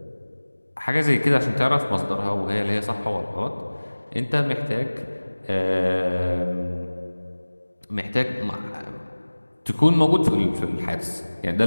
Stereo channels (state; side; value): inverted; both; correlation -1.00